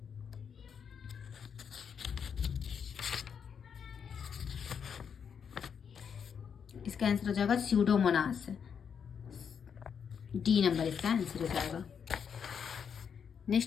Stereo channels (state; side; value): quieter; right; 7.1 dB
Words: स्यूडोमोनास। डी नंबर इसका आंसर हो जाएगा।